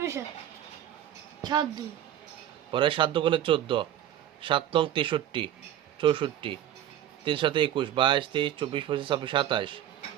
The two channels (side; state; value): left; quieter; 11.5 dB